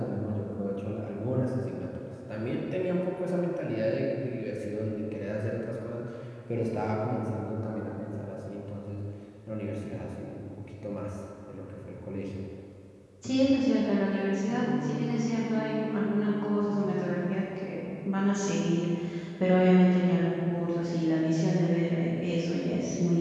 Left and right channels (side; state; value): both; identical; correlation 1.00